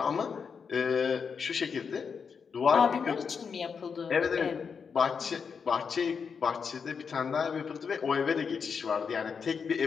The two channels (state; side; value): quieter; right; 6.0 dB